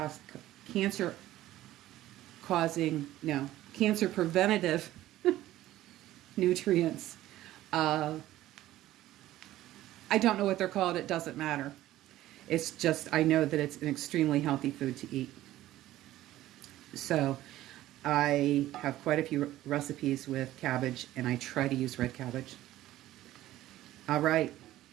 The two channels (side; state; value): left; quieter; 14.8 dB